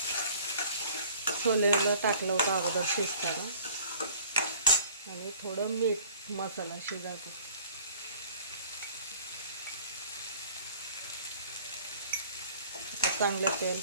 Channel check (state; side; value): inverted; both; correlation -0.50